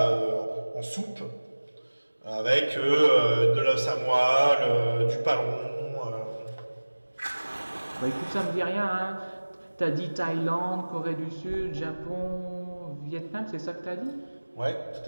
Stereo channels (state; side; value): inverted; both; correlation -1.00